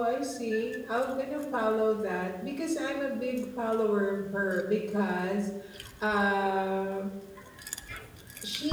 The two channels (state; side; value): identical; both; correlation 1.00